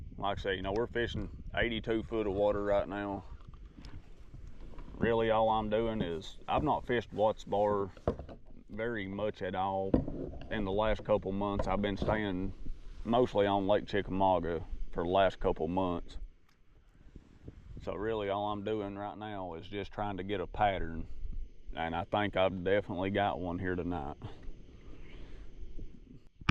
Like I say, you know, we're fishing 82 foot of water right now. Really all I'm doing is, I've not fished Watts Bar very much at all in the last couple months. I've been staying mostly on Lake Chickamauga for the last couple months. So really all I'm doing right now is just trying to get a pattern, and I think I've definitely got one here tonight.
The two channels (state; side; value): identical; both; correlation 1.00